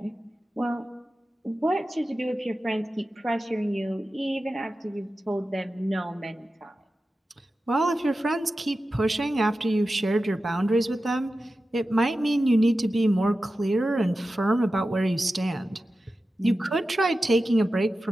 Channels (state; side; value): normal; both; correlation 0.93